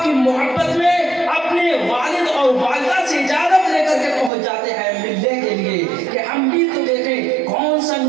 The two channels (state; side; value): drops out; left; at 4.3 s